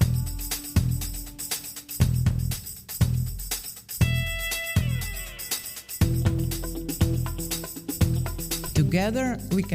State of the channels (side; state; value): both; identical; correlation 1.00